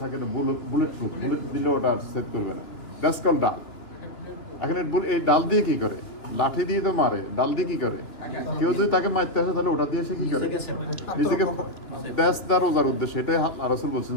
থাকে বুলেট প্রুফ, বুলেট দিলে ওটা সেভ করবে না। দ্যাটস কল ডাল। এখন এই ডাল দিয়ে কি করে? লাঠি দিয়ে তো মারে, ডাল দিয়ে কি করে? কেউ যদি তাকে মারতে আসে তাহলে ওটা দিয়ে সে কি করে? নিজেকে রোজার উদ্দেশ্য এটাই রাসূল বলছেন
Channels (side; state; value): right; late; 2.9 ms